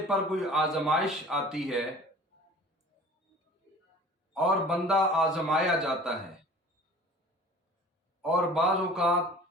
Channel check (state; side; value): normal; both; correlation 0.44